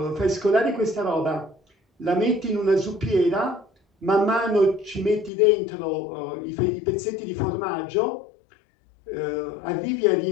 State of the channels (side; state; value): right; drops out; at 5.3 s